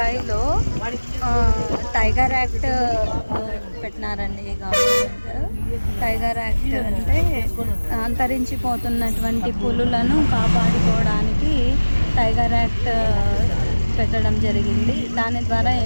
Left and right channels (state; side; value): inverted; both; correlation -1.00